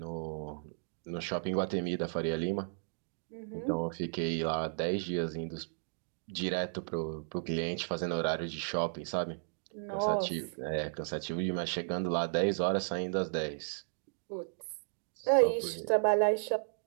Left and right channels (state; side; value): silent; left; digital silence